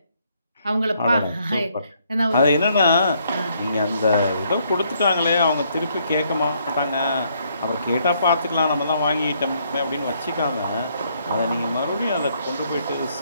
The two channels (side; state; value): both; inverted; correlation -0.70